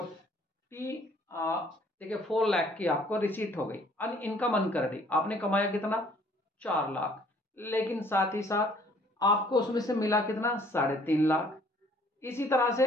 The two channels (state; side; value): normal; both; correlation 0.59